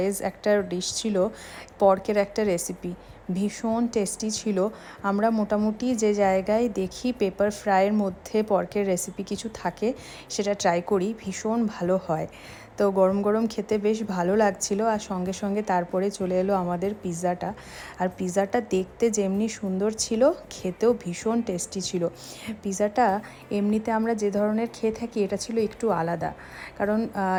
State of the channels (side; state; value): both; identical; correlation 1.00